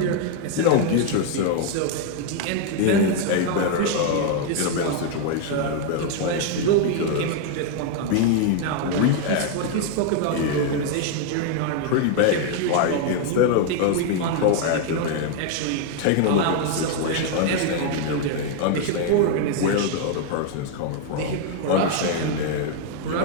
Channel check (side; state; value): both; different; correlation 0.01